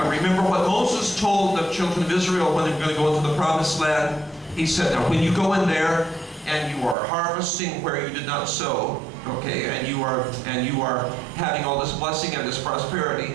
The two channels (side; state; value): left; drops out; at 7.0 s